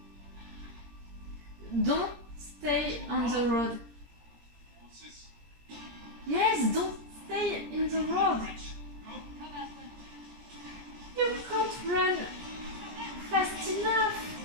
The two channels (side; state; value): left; late; 17 ms